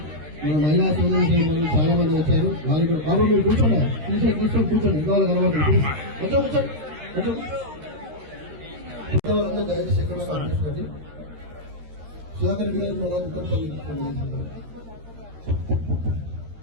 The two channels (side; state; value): left; late; 13 ms